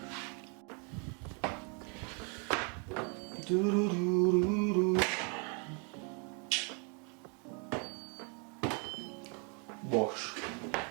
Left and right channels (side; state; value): left; quieter; 35.9 dB